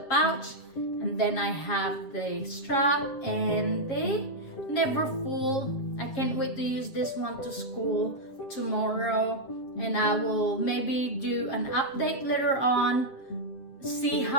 pouch, and then I have the strap and the Neverfull. I can't wait to use this one to school tomorrow, and I will maybe do an update later on, see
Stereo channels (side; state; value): right; late; 7.4 ms